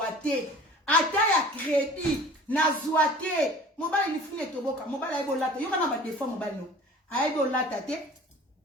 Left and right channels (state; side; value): normal; both; correlation 0.45